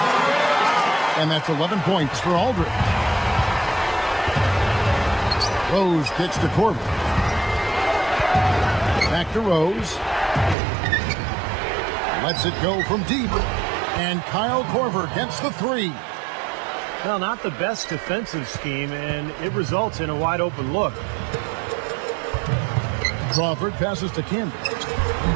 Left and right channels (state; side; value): drops out; left; at 10.6 s